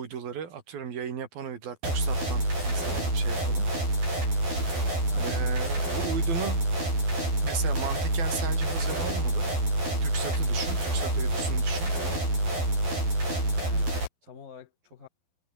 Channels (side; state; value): left; late; 12 ms